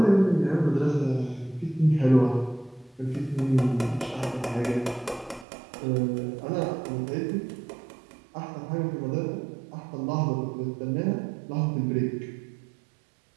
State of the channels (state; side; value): drops out; left; at 5.5 s